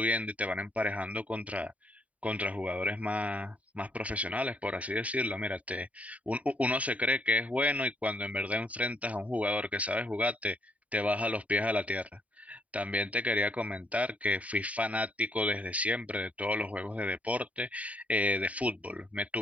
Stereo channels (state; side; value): late; left; 0.068 ms